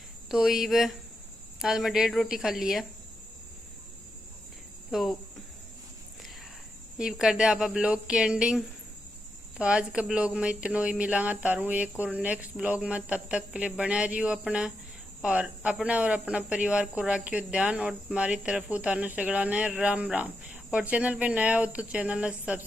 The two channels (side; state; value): both; normal; correlation 0.85